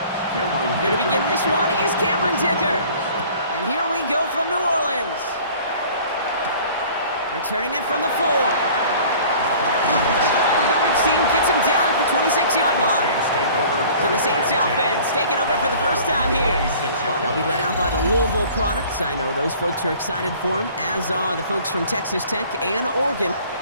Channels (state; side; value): inverted; both; correlation -0.48